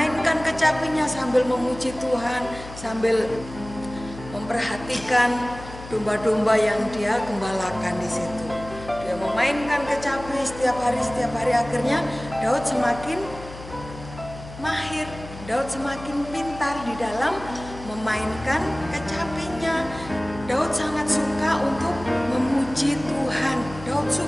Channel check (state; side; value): noise; left; hum, 14 dB below the sound